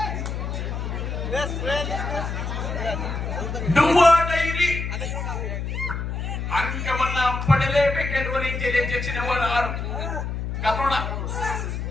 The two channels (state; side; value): noise; left; hum, 3 dB below the sound